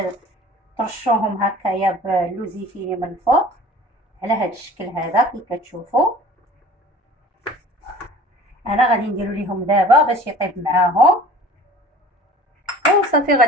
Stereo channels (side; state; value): both; normal; correlation 0.45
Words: ترشوهم هكايا باللوزيفيري من الفوق على هذا الشكل هذا كي كتشوفوا. انا غادي نديرو ليهم دابا باش يطيب معاهم، وصافي